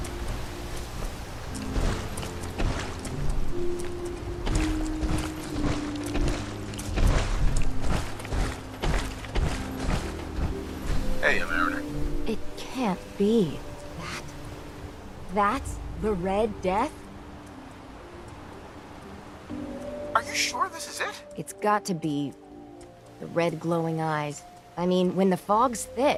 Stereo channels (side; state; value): both; identical; correlation 1.00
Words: Hey, Mariner. It can't be. That's the Red Death? Are you sure this is it? It's got to be. The red glowing eyes. I mean, when the fog's